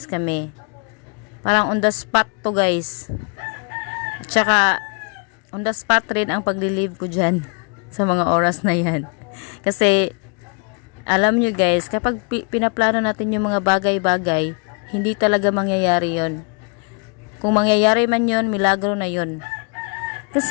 kami. Parang on the spot to guys. Tsaka on the spot rin ang pag-relieve ko dyan sa mga oras na yan. Kasi alam nyo guys, kapag pinaplano natin yung mga bagay-bagay, hindi talaga mangyayari yon. Kung mangyayari man yon, milagro na yon.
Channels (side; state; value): right; quieter; 36.6 dB